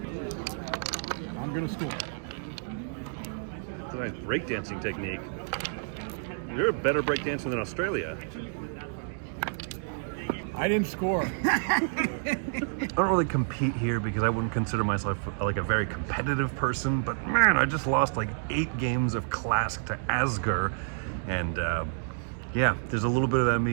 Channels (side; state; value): left; silent; digital silence